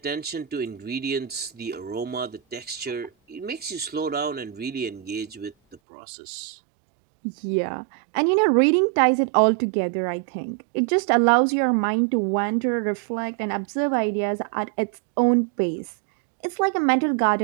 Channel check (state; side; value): drops out; left; at 5.8 s